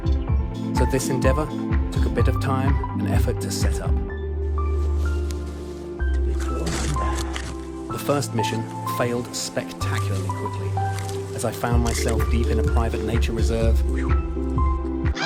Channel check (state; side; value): identical; both; correlation 1.00